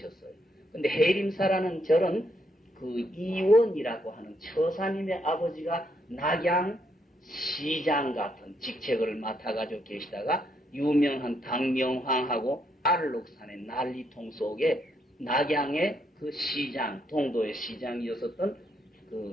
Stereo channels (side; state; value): both; normal; correlation 0.76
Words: 근데 해림사라는 절은 그 이원이라고 하는 처사님의 아버지가 낙양 시장 같은 직책을 맡아가지고 계시다가 유명한 당명황하고 알록산의 난리통 속에 낙양의 그 시장, 동도의 시장이었었던